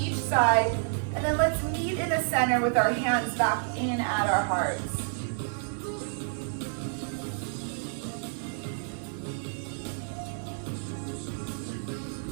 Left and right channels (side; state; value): left; silent; digital silence